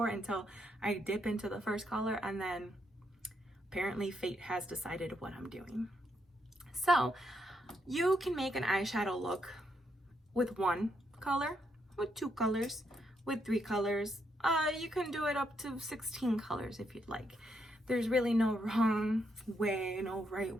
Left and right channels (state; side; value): normal; both; correlation 0.78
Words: until I dip into the first color, and then apparently fate has decided what I'm doing. So you can make an eyeshadow look with 1 color, with 2 colors, with 3 colors. You can do it up to 16 colors if you'd like. There's really no wrong way, no right